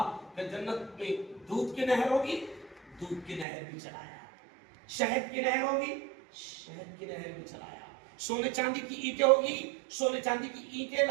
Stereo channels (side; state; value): left; drops out; at 3.5 s